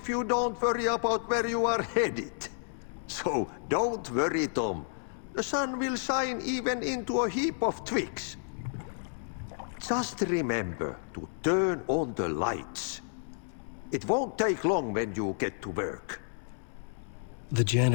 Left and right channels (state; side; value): silent; right; 57 dB below the other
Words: you don't worry about where you are headed. So don't worry, Tom. The sun will shine even into a heap of twigs. Just remember to turn on the lights. It won't take long when you get to work. The